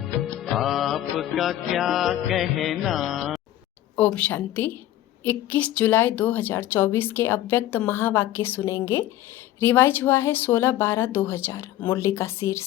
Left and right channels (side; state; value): right; quieter; 13.5 dB